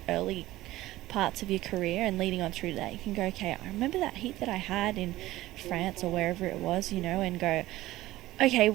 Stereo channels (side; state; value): left; quieter; 16.7 dB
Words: early parts of your career and leading on through that. You can go, okay, I remember that heat that I had in France or wherever it was, you know, and go, okay,